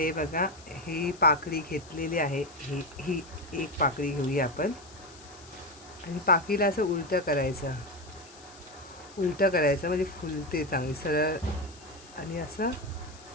बघा ही पाकळी घेतलेली आहे. ही एक पाकळी घेऊया आपण आणि पाकळीला असं उलटं करायचं. उलटं करायचं म्हणजे फुलते चांगली सरळ. आणि असं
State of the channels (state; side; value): noise; left; hiss, 21 dB below the sound